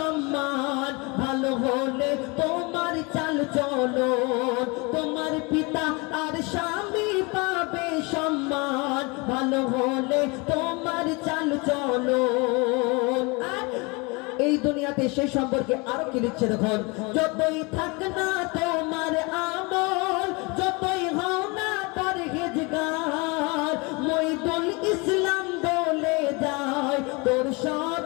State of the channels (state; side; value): quieter; right; 28.0 dB